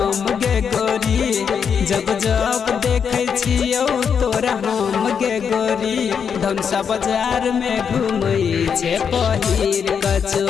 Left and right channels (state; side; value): quieter; right; 7.0 dB